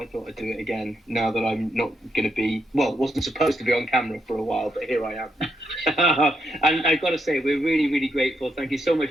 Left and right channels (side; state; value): both; normal; correlation 0.80